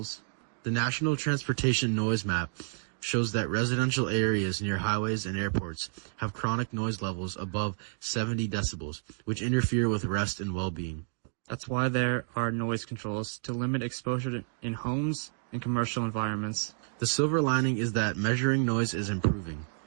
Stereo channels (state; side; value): silent; left; digital silence